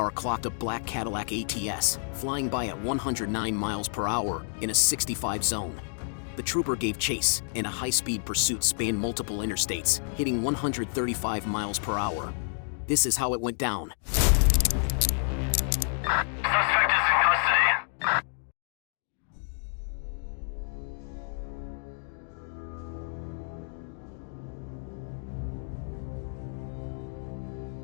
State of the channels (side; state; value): right; silent; 57 dB below the other